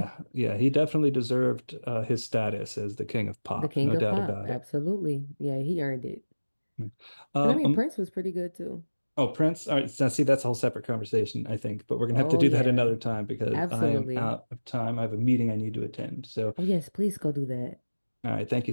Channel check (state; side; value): inverted; both; correlation -1.00